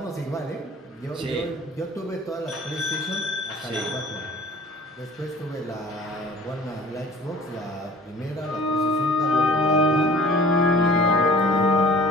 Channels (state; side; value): normal; both; correlation 0.48